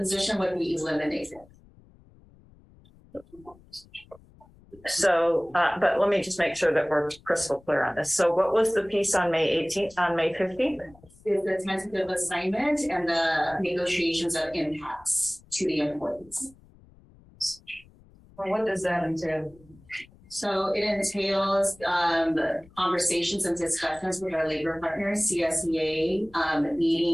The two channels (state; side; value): noise; left; rumble, 26 dB below the sound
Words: would be eliminated. So, but let me just make sure that we're crystal clear on this. So what was the piece on May 18th, on May 15th? Is the tentative assignment and the negotiations of impacts to the employees. What does that entail? So it entails conversations and discussions with our labor partners, CSEA,